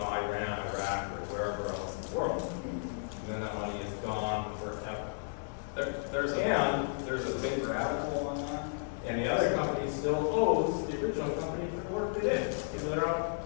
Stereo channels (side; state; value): right; silent; digital silence